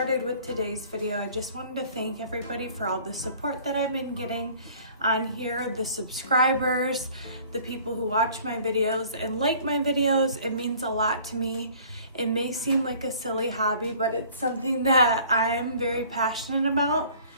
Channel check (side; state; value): both; inverted; correlation -0.52